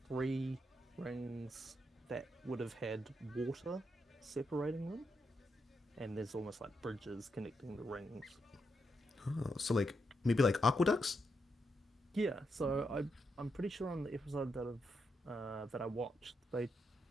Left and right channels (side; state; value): both; normal; correlation 0.82